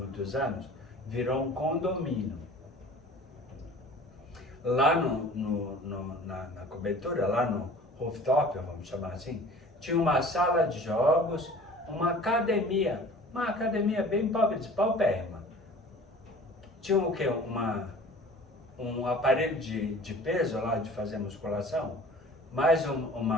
anos, virou um condomínio. Lá na cobertura, lá no rooftop, vamos chamar assim, tinha uma sala de jogos, uma academia bem pobre, de paupérrima. Tinha o quê? Um aparelho de peso lá, de fazer musculação, mais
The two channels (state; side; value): normal; both; correlation 0.45